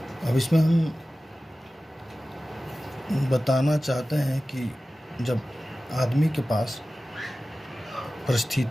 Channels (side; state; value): both; normal; correlation 0.96